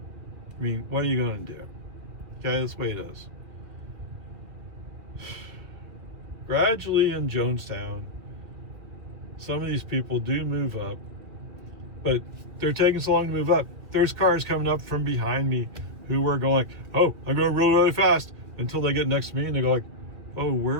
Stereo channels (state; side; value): late; left; 2.5 ms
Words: I mean, what are you going to do? Okay, that's the way it is. Gradually in Jonestown, some of these people do move up, but they're taking so long to move up. There's cars coming up from behind me who were going like, oh, I'm going really, really fast, until they get next to me and they go like, oh,